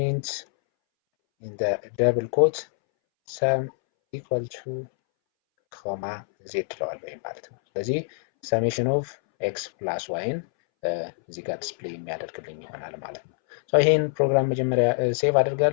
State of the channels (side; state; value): right; silent; 61 dB below the other